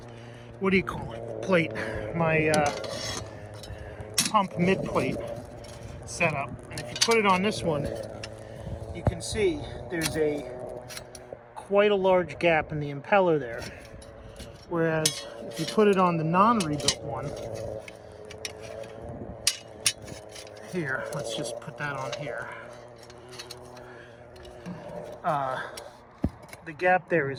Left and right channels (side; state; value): both; identical; correlation 1.00